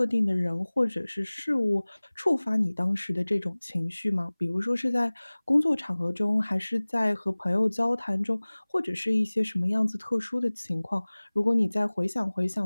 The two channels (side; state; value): both; inverted; correlation -1.00